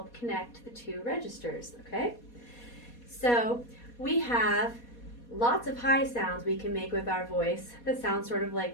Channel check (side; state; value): right; late; 4.2 ms